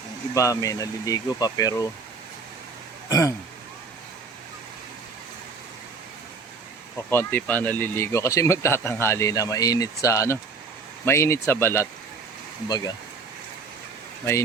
iba may naliligo pa pero o konti pa naliligo kasi magtatanghali na, mainit sa ano, mainit sa balat. Kumbaga,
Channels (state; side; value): quieter; left; 4.6 dB